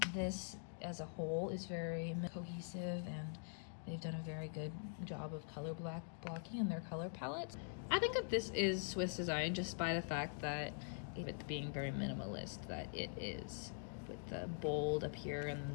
this as a whole is very cohesive, and they've done a very good job of color blocking in their color palettes. I think that this is Swiss design just by the fact that it being very minimalist, that it is, with the bold up here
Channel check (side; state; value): right; silent; digital silence